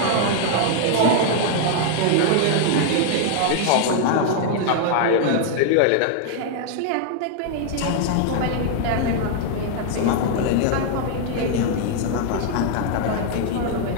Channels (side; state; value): both; different; correlation 0.00